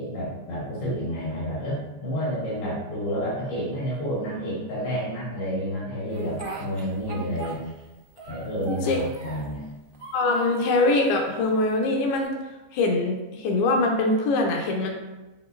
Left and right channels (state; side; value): late; right; 14 ms